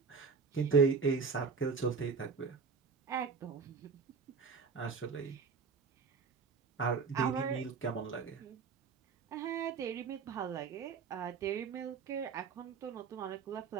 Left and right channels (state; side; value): quieter; left; 5.4 dB